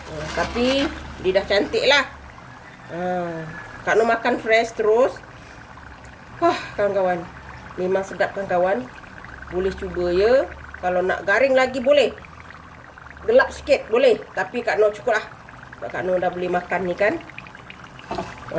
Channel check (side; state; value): both; identical; correlation 1.00